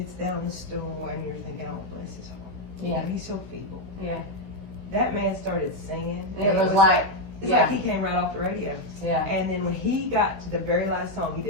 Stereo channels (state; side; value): late; left; 15 ms